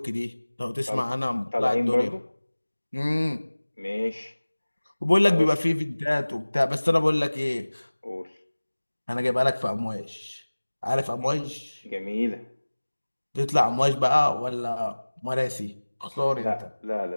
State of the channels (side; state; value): both; inverted; correlation -1.00